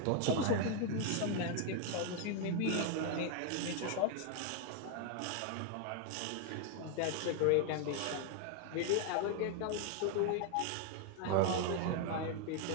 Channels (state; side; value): different; both; correlation 0.01